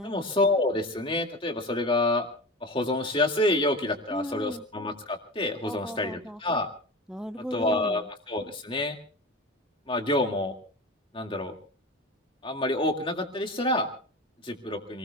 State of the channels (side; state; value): both; normal; correlation 0.29